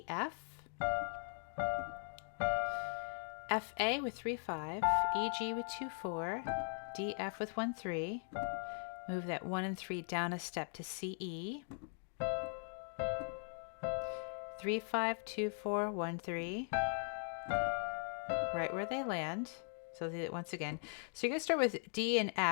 F. F, A with 3, 5, E, G with 2, 4, D, F with 1, 3. Move that 1 and 3 down a step to C, E. 3, 5, 2, 4, 1, 3. Right where they land. So I'll do it once again. So you're going to start with D and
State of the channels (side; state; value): right; silent; 51 dB below the other